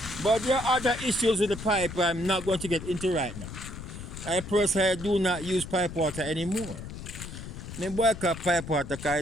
But there are other issues with the pipe I'm not going to get into right now. I personally do not use pipe water anymore. I boycott pipe water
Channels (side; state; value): left; noise; rumble, 10 dB below the sound